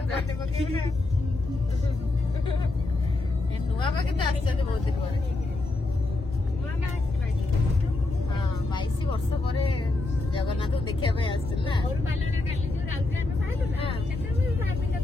पके ए नुआ बाके तो आछन बहुत दिन पर हां 22 वर्ष पर जगन्नाथ देखिया पे आछन ना और बालने काली जो राउरकेला में पाइलु ना सेते भी भाबी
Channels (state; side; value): quieter; right; 3.0 dB